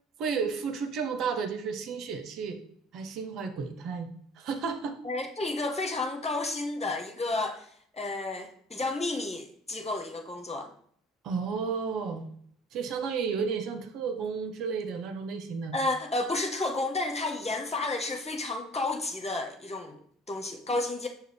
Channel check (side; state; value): both; normal; correlation 0.48